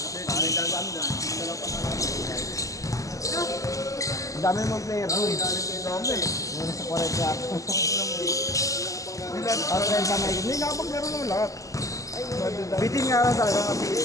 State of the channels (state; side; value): late; right; 0.16 ms